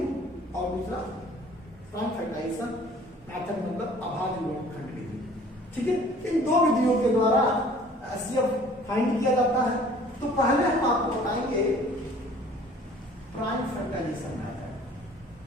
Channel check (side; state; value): both; normal; correlation 0.51